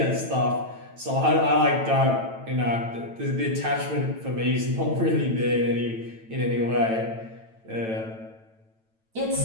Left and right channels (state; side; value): late; left; 9.0 ms